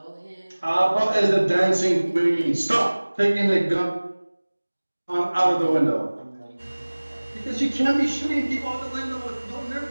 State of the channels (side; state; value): both; inverted; correlation -1.00